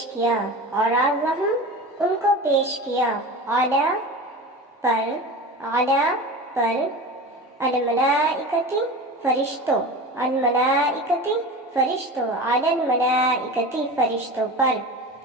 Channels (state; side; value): normal; both; correlation 0.31